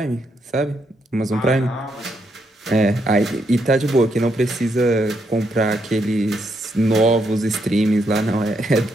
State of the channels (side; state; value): both; normal; correlation 0.78